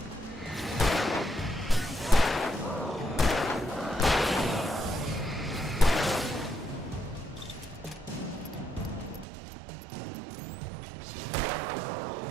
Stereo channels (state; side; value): drops out; left; at 9.2 s